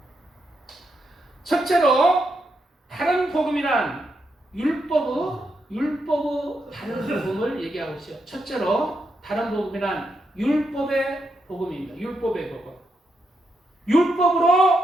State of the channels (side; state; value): both; normal; correlation 0.82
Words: 첫째로 다른 복음이란 율법의 율법의 다른 복음을 얘기하고 있어요. 첫째로 다른 복음이란 율법의 복음입니다. 율법의 복음.